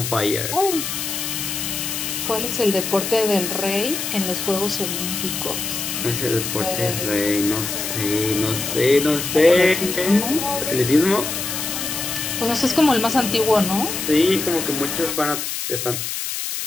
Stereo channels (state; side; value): noise; left; hiss, 4 dB below the sound